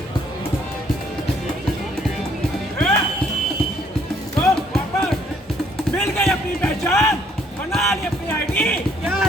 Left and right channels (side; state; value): both; normal; correlation 0.65